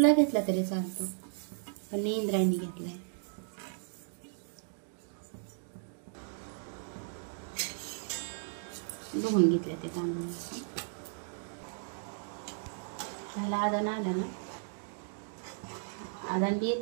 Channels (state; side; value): silent; left; digital silence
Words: घेतला तरी चालतो, पण मी इंद्रायणी घेतलाय। धुवून घेतल्या ते तांदूळ, त्याला आदन आलं ना, आदन बी